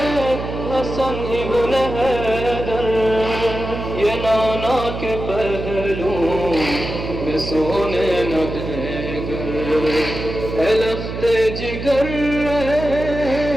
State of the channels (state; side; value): noise; right; hum, 7 dB below the sound